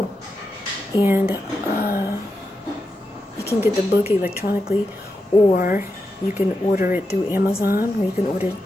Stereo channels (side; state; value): both; normal; correlation 0.88